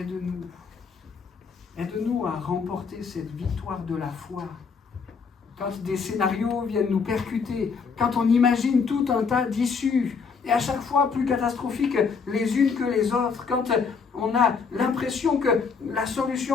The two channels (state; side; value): quieter; right; 5.5 dB